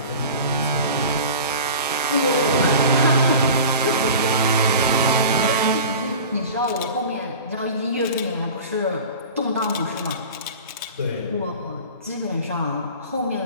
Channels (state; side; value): inverted; both; correlation -0.36